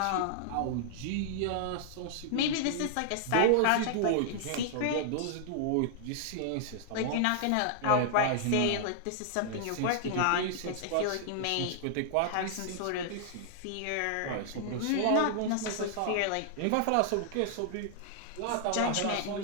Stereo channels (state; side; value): different; both; correlation -0.01